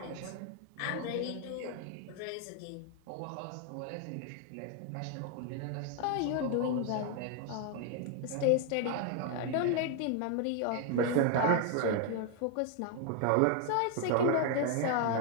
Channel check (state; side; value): different; both; correlation 0.00